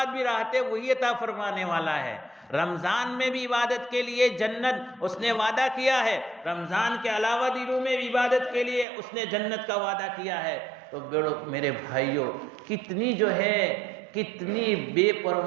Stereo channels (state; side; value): drops out; left; at 8.8 s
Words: بھی راحتیں وہی عطا فرمانے والا ہے۔ رمضان میں بھی عبادت کے لیے جنت اس نے وعدہ کیا ہے، رمضان کے علاوہ دنوں میں بھی عبادت کے لیے اس نے جنت کا وعدہ کیا ہے۔ تو میرے بھائیوں، کتنی جو ہے کتنی بے